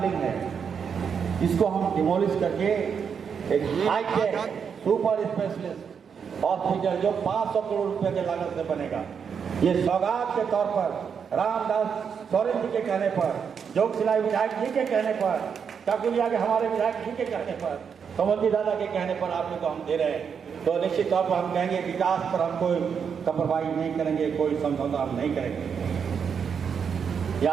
है इसको हम डिमोलिश करके एक हाईटेक सुपर स्पेशलिस्ट हॉस्पिटल जो 500 करोड़ रुपए के लागत से बनेगा, ये सौगात के तौर पर रामदास सोरेन जी के कहने पर, जोगसिलाई विधायक जी के कहने पर, काकुलिया के हमारे विधायक जी के कहने पर, कमल जी दादा के कहने पर आप लोग को हम दे रहे हैं। तो निश्चित तौर पर हम कहेंगे विकास पर हम कोई कपरवाही नहीं करेंगे, कोई समझौता हम नहीं करेंगे।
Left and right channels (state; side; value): quieter; left; 6.8 dB